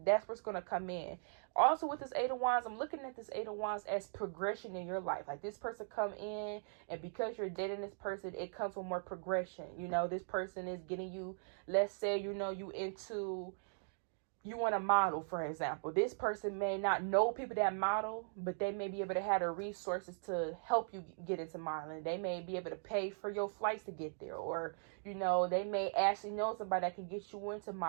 that's what's going to come in. Also with this 8 of Wands, I'm looking at this 8 of Wands as progression in your life. Like this person come in and because you're dating this person, it comes with more progression. You know, this person is getting you, let's say, you know, you want to model, for example. This person may not know people that model, but they may be able to have the resources to help you get into modeling. They may be able to pay for your flights to get there, or, you know, they may actually know somebody that can get you into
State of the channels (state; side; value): silent; left; digital silence